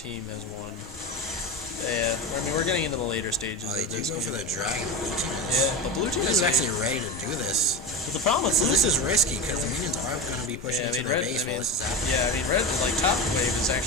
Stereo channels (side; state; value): both; normal; correlation 0.22